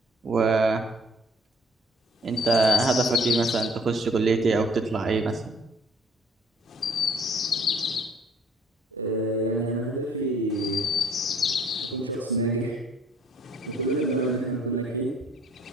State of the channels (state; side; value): normal; both; correlation 0.58